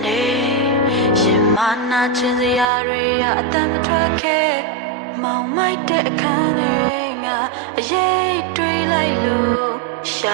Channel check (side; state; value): left; drops out; at 2.7 s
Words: နေရှင်မနာချင်စရာတွေအတမ်းမထွက်ခဲ့မောင်မိုက်တဲ့အခန်းထဲငါအရေးတွေးလိုက်လို့ရှ